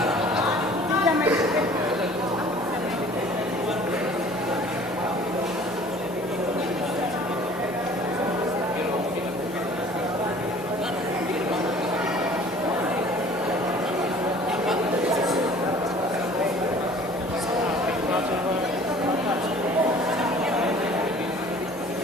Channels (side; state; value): both; normal; correlation 0.49